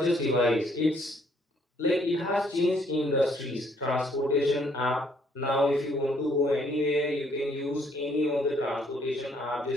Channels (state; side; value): normal; both; correlation 0.66